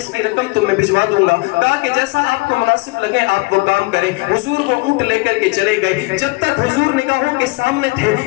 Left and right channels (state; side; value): quieter; right; 24.3 dB